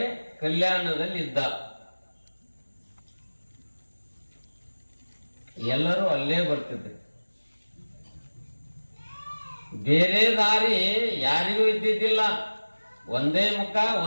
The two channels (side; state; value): both; inverted; correlation -1.00